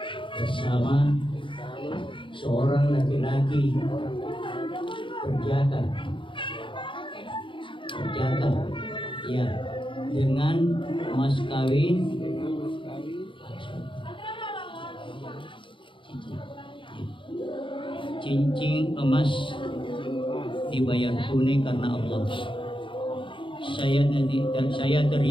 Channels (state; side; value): late; right; 0.24 ms